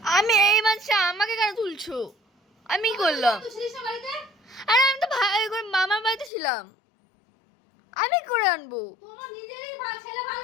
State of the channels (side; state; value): right; drops out; at 6.3 s